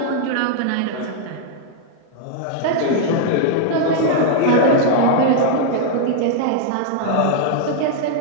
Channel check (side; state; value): both; different; correlation -0.01